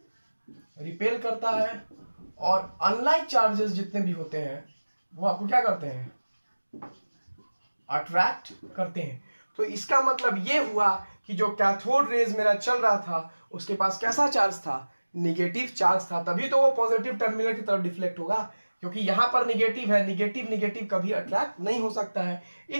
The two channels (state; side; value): inverted; both; correlation -1.00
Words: रिपेल करता है, और अनलाइक चार्जेस जितने भी होते हैं वो आपको क्या करते हैं? अट्रैक्ट करते हैं। तो इसका मतलब ये हुआ कि जो कैथोड रेज मेरा चल रहा था, उसके पास कैसा चार्ज था? निगेटिव चार्ज था, तभी तो वो पॉजिटिव टर्मिनल की तरफ डिफ्लेक्ट होगा, क्योंकि यहां पर निगेटिव है। निगेटिव निगेटिव कभी अट्रैक्ट नहीं हो सकता है।